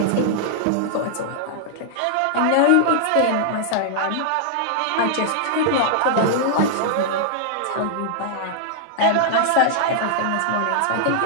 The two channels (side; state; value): both; different; correlation -0.01